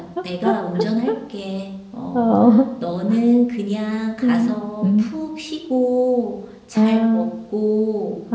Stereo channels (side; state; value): both; identical; correlation 1.00